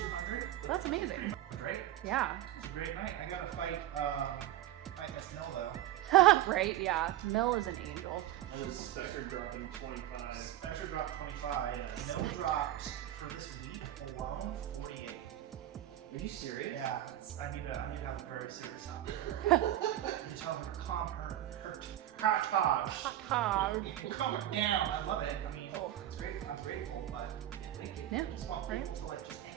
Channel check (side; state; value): left; quieter; 13.1 dB